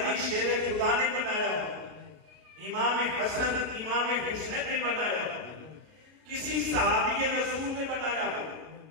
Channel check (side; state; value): left; late; 33 ms